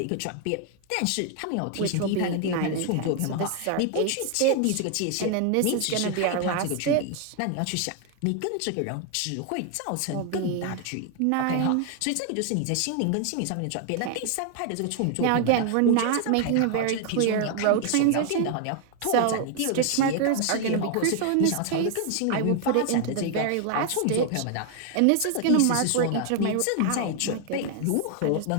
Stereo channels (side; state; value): both; different; correlation 0.00